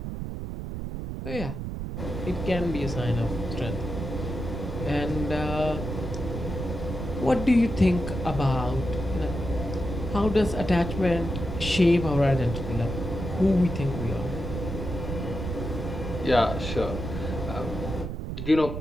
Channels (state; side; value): noise; right; rumble, 5 dB below the sound